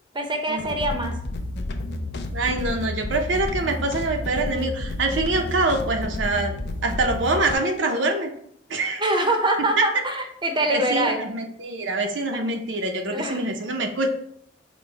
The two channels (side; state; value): both; normal; correlation 0.14